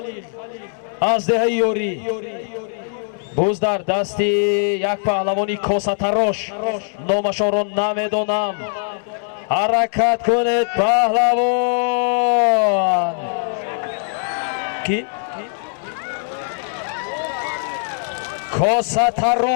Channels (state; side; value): silent; right; digital silence